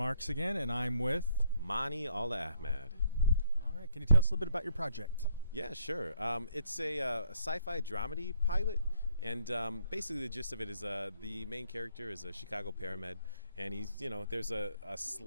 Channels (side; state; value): both; inverted; correlation -0.68